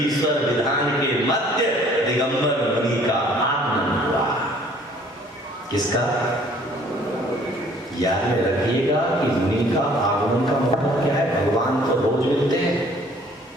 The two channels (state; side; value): normal; both; correlation 0.56